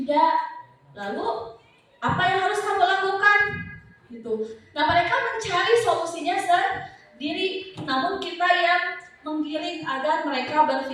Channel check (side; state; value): both; identical; correlation 1.00